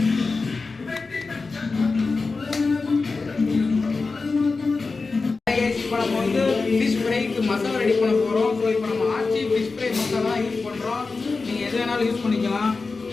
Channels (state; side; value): quieter; right; 4.1 dB